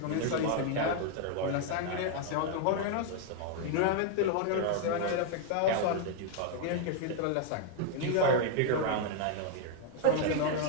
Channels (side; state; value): both; different; correlation 0.00